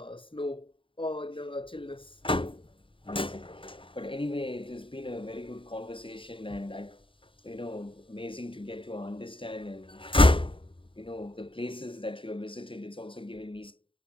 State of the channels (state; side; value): late; right; 0.25 ms